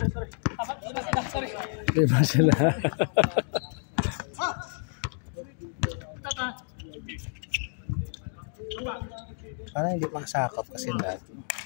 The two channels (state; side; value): silent; right; digital silence